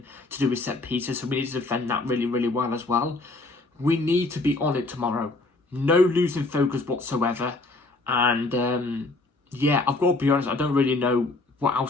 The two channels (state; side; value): quieter; right; 3.1 dB